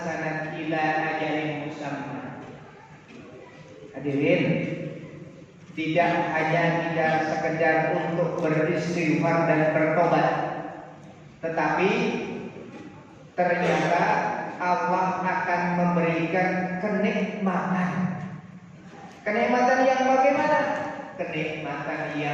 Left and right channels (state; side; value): identical; both; correlation 1.00